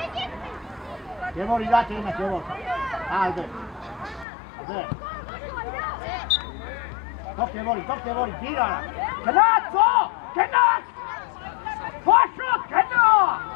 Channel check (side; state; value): right; drops out; at 4.2 s